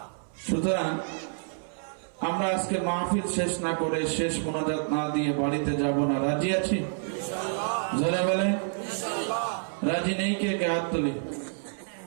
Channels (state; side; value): silent; left; 59 dB below the other